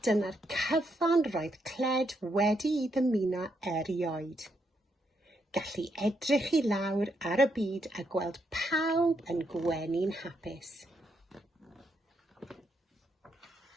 dyna'r cyfan roedd Cled wedi I ddymuno erioed. Gallu edrych I lawr ar y byd a gweld pawb yn gwenu'n hapus.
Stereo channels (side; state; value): both; normal; correlation 0.78